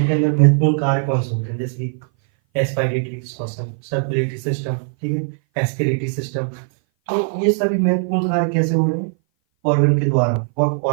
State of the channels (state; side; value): silent; left; 59 dB below the other